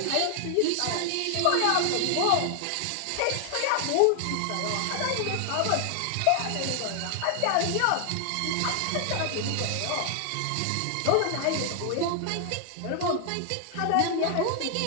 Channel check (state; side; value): different; both; correlation 0.00